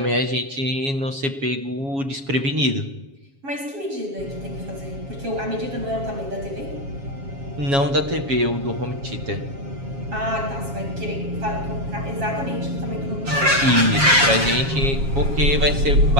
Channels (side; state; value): left; late; 7.3 ms